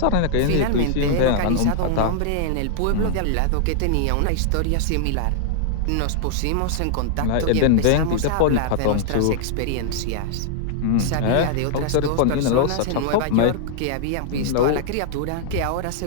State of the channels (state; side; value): different; both; correlation -0.01